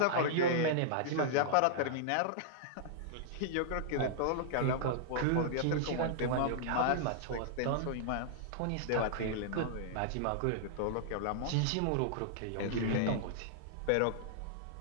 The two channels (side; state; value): both; different; correlation -0.01